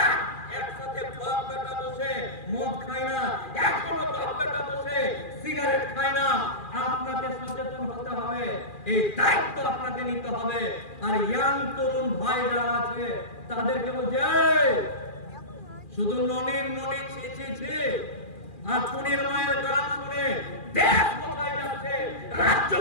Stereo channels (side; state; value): right; late; 2.4 ms